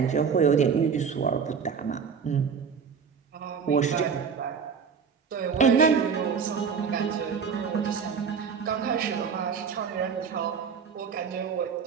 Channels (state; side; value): quieter; left; 6.3 dB